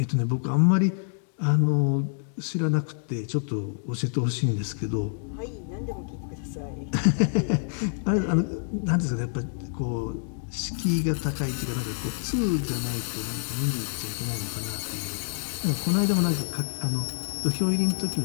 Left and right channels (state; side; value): silent; right; digital silence